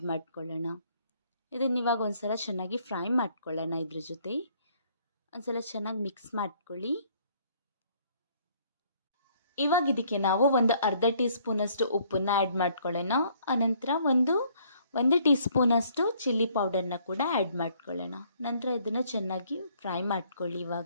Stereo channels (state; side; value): inverted; both; correlation -0.63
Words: ಮಾಡ್ಕೊಳ್ಳೋಣ. ಇದನ್ನು ಇವಾಗ ಒಂದ್ಸಲ ಚೆನ್ನಾಗಿ ಫ್ರೈ ಮಾಡ್ಕೊಳ್ಳೋಣ. ಇದ್ರ ಜೊತೆ ಒಂದ್ಸಲ ಚೆನ್ನಾಗಿ ಮಿಕ್ಸ್ ಮಾಡ್ಕೊಳ್ಳಿ. ಇವಾಗ ಇದಕ್ಕೆ ನಾವು ಒಂದು ಅರ್ಧ ಟೀ ಸ್ಪೂನ್ ಅಷ್ಟು ಉಪ್ಪನ್ನ ಆ್ಯಡ್ ಮಾಡ್ಕೊಳ್ಳೋಣ. ಅನಂತರ ಒಂದು ಟೀ ಸ್ಪೂನ್ ಅಷ್ಟು ಚಿಲ್ಲಿ ಪೌಡರ್ನ ಕೂಡ ಆ್ಯಡ್ ಮಾಡ್ಕೊಳ್ಳೋಣ. ನಂತರ ಇದನ್ನು ಚೆನ್ನಾಗಿ ಫ್ರೈ ಮಾಡ್ಕೊಳ್ಳಿ.